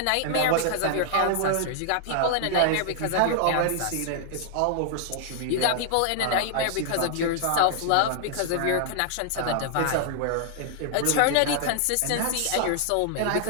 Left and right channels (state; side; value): different; both; correlation -0.01